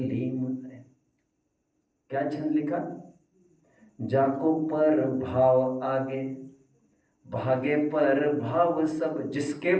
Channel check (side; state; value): both; identical; correlation 1.00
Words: है। क्या छंद लिखा? जाको पर भाव आगे भागे पर भाव सब, जिसके